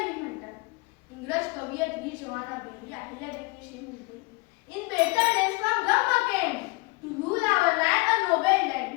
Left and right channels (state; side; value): quieter; right; 26.6 dB